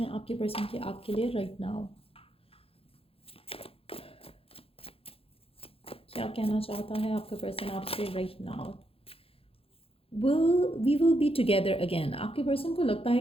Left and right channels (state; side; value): late; right; 0.27 ms